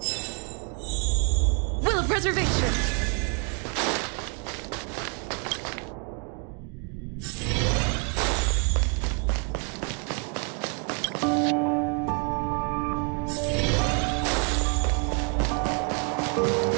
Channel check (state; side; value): quieter; left; 38.3 dB